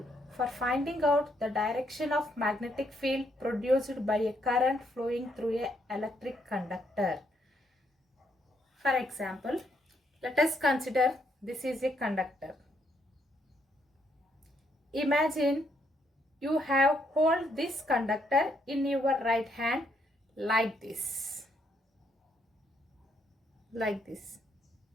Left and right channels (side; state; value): both; normal; correlation 0.74